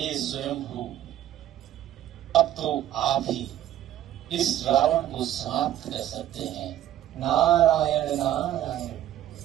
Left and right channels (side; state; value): left; quieter; 12.3 dB